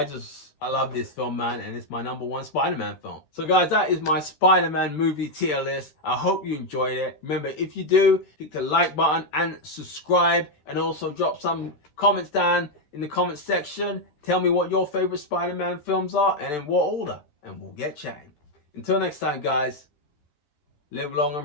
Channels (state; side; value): late; right; 13 ms